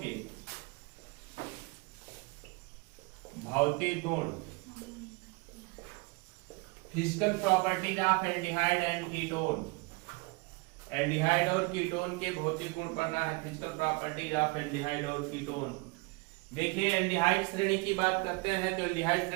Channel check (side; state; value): left; quieter; 27.6 dB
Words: भौतिक गुण, physical properties of aldehyde and ketone. Aldehyde और कीटोन के भौतिक गुण पढ़ना है, फिजिकल प्रॉपर्टीज ऑफ एल्डिहाइड और कीटोन। देखिए एल्डिहाइड श्रेणी की बात करते हैं तो एल्डिहाइड